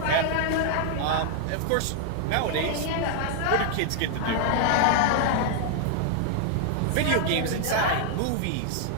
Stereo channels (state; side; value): different; both; correlation 0.00